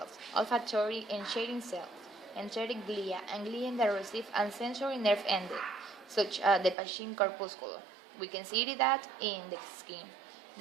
olfactory and shading cells, enteric glia, and glia that receive and sensory nerve endings, such as the Pachin corpuscle. We can see that in the skin.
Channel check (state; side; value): drops out; left; at 6.8 s